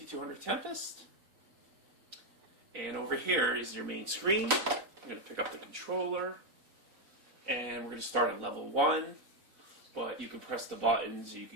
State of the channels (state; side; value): late; left; 4.0 ms